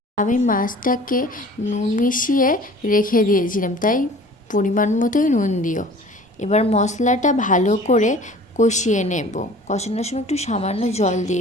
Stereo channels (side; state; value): both; normal; correlation 0.46